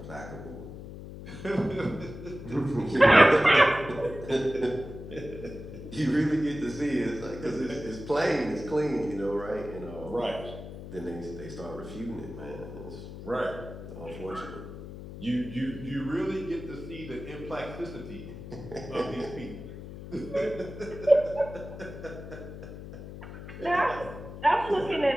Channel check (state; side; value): noise; left; hum, 11 dB below the sound